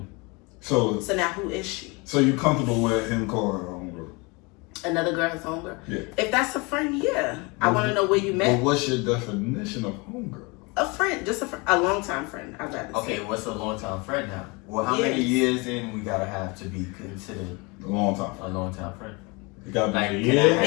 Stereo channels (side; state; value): right; quieter; 27.8 dB